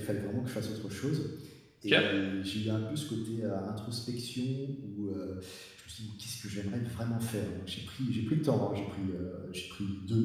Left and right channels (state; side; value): identical; both; correlation 1.00